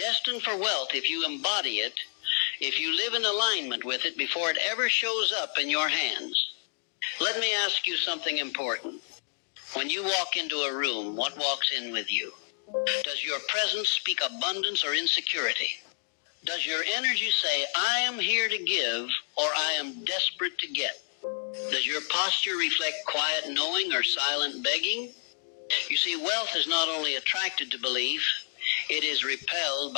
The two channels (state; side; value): silent; right; 58 dB below the other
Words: for wealth if you embody it, if you live in alignment with it before it ever shows up in your hands. Let me ask you something important. When you walk into a room, what walks in with you? Does your presence speak abundance or insecurity? Does your energy say, I am here to give, or I am desperate to get? Does your posture reflect quiet knowing or silent begging? You see, wealth is not only attracted to belief, it is repelled